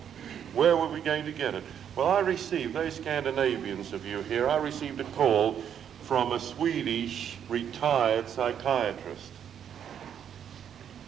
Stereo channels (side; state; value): left; quieter; 8.8 dB